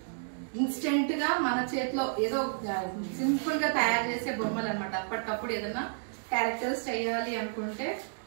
ఇన్స్టెంట్ గా మన చేతిలో ఏదో సింపుల్ గా తయారు చేసే బొమ్మలు అనమాట. అప్పటికప్పుడు ఏదైనా క్యారెక్టర్స్ చేయాలి అనుకుంటే,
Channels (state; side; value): silent; left; 57 dB below the other